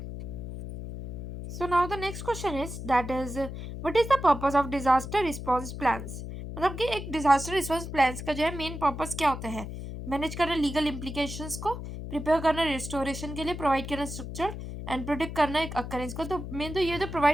So now the next question is that is what is the purpose of disaster response plans? मतलब कि एक disaster response plans का जो है main purpose क्या होता है? Manage करना लीगल इम्प्लीकेशंस को, प्रिपेयर करना रिस्टोरेशन के लिए, प्रोवाइड करना स्ट्रक्चर एंड प्रोडिक्ट करना एक अकरेंस को। तो मेन तो ये तो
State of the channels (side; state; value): left; noise; hum, 8 dB below the sound